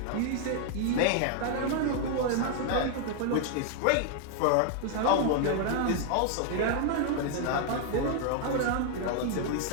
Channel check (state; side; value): different; both; correlation 0.00